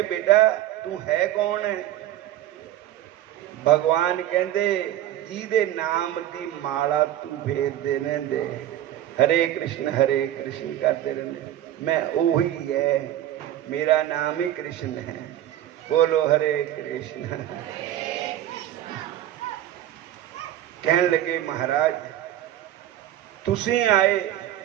ਬੇਟਾ ਤੂੰ ਹੈ ਕੌਣ ਹੈ? ਭਗਵਾਨ ਕਹਿੰਦੇ ਜਿਹਦੇ ਨਾਮ ਦੀ ਮਾਲਾ ਤੂੰ ਫੇਰਦੇ ਰਹਿੰਦੇ, ਹਰੇ ਕ੍ਰਿਸ਼ਨ ਕਰਦੇ ਰਹਿੰਦੇ, ਮੈਂ ਉਹੀ ਹੈ, ਮੇਰਾ ਨਾਮ ਹੀ ਕ੍ਰਿਸ਼ਨ ਹੈ। ਬੋਲੋ ਹਰੇ ਕ੍ਰਿਸ਼ਨ। ਕਹਿਣ ਲੱਗੇ ਮਹਾਰਾਜ ਤੁਸੀਂ ਆਏ,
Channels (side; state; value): left; quieter; 12.7 dB